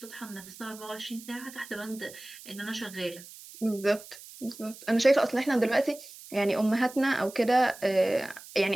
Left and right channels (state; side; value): noise; right; hiss, 17 dB below the sound